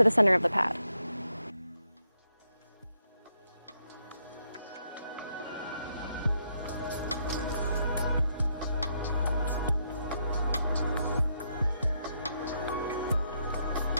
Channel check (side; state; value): both; inverted; correlation -0.78